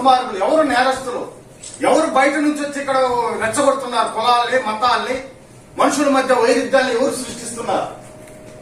ఎవరు నేరస్తులు, ఎవరు బయట నుంచి వచ్చి ఇక్కడ రెచ్చగొడుతున్నారు? కులాలని, మతాల్ని, మనుషుల మధ్య వైరుధ్యాన్ని ఎవరు సృష్టిస్తున్నారు?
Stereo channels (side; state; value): both; identical; correlation 1.00